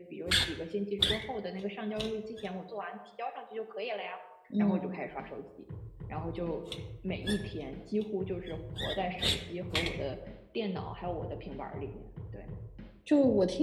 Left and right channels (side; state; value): both; identical; correlation 1.00